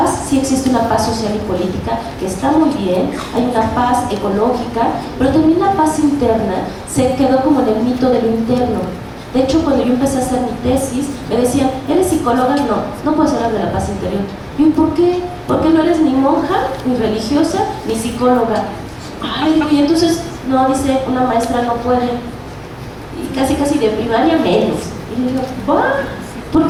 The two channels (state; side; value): identical; both; correlation 1.00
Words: sí existe una paz social y política, que está muy bien, hay una paz ecológica, pero también la paz interna se quedó como en el mito de lo interno. De hecho, cuando yo empecé a hacer mi tesis, me decían, ¿eres psicóloga? No puedes hablar de la paz interior. Y yo, ¿por qué? Porque no eres ni monja, ni religiosa, ni psicóloga. Ay, y entonces, no, dice, una maestra no puede. Y casi de primaria menos. Y yo digo, ¿va?